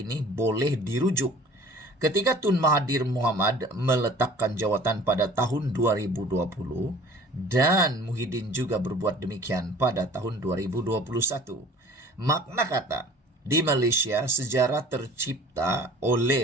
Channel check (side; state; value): both; normal; correlation 0.47